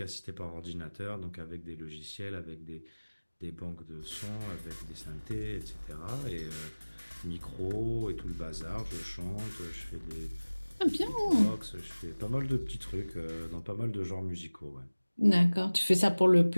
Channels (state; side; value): inverted; both; correlation -1.00